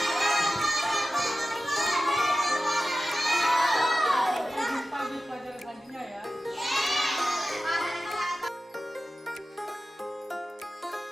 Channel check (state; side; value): normal; both; correlation 0.94